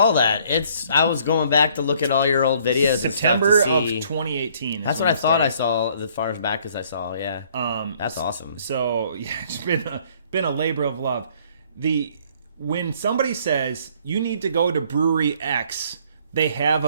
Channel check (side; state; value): both; inverted; correlation -0.61